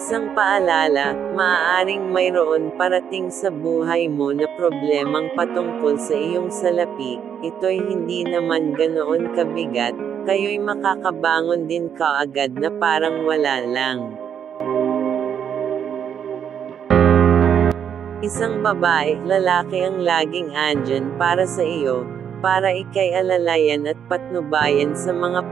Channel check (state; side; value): quieter; left; 8.4 dB